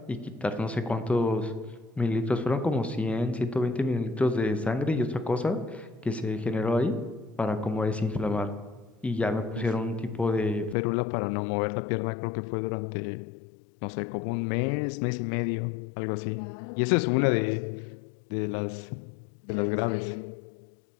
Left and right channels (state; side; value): drops out; right; at 10.8 s